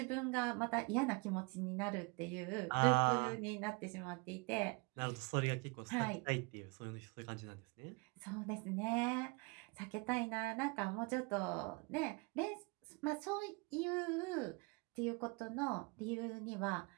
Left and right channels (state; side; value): quieter; left; 29.5 dB